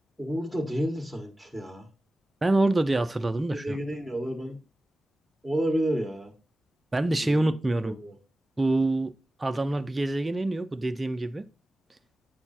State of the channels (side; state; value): both; normal; correlation 0.96